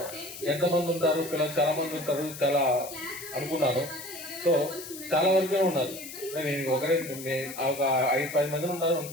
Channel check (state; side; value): noise; left; hiss, 12 dB below the sound